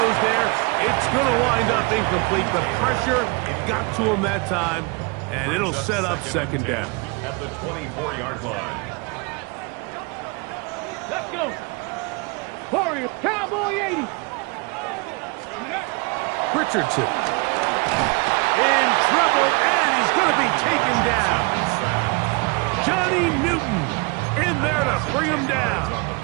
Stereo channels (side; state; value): left; quieter; 29.5 dB